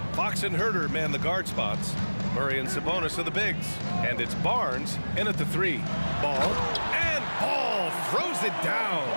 Fox and Herter man the guard spots. Murray and Sabonis are the bigs. And it's Barnes in at the 3. Ball. And Ball throws it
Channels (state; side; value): inverted; both; correlation -1.00